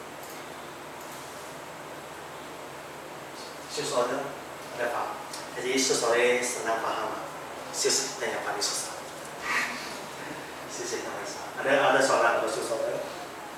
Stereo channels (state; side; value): identical; both; correlation 1.00